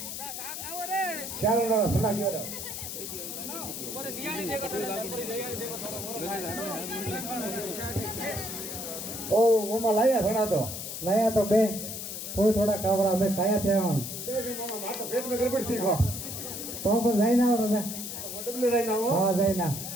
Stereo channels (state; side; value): noise; left; hiss, 7 dB below the sound